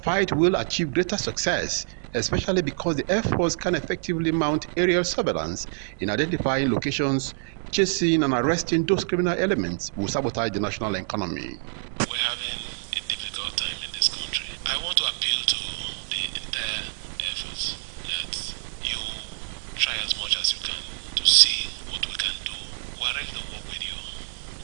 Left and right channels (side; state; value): left; silent; digital silence